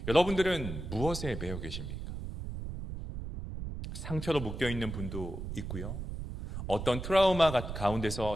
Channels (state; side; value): noise; right; rumble, 7 dB below the sound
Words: 여러분들은 무엇에 매여 계십니까? 상처로 묶여있는 분도 있고요. 어떤 트라우마 가운데서